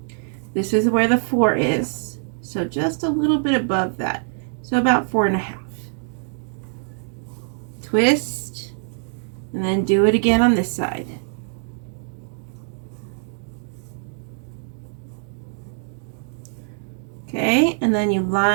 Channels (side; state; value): left; silent; digital silence